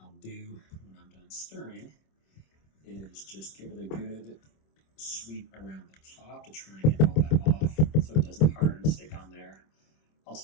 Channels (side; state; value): right; late; 26 ms